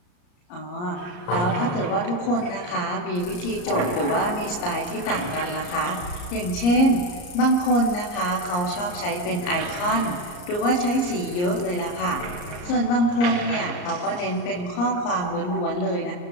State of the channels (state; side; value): late; right; 34 ms